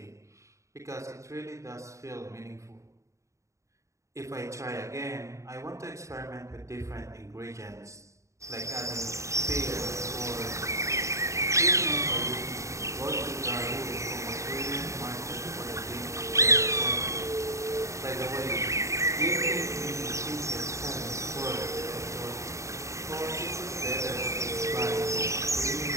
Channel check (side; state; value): left; late; 0.15 ms